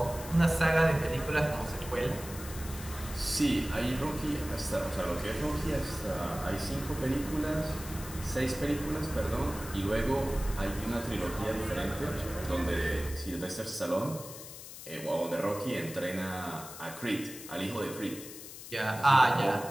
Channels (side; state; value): left; noise; hiss, 13 dB below the sound